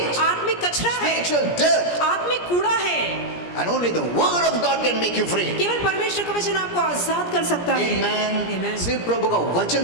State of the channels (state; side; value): late; right; 17 ms